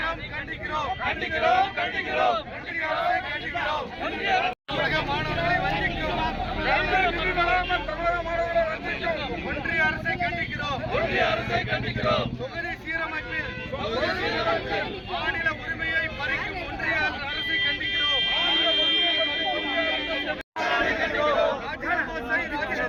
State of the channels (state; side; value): identical; both; correlation 1.00